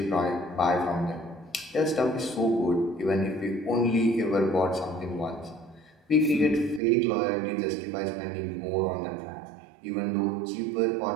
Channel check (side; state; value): left; drops out; at 6.8 s